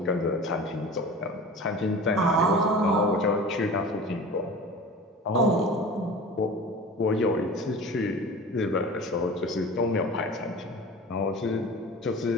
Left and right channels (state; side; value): normal; both; correlation 0.37